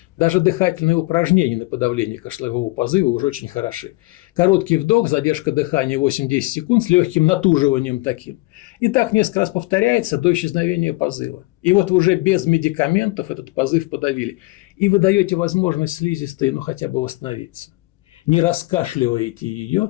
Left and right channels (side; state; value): right; quieter; 22.5 dB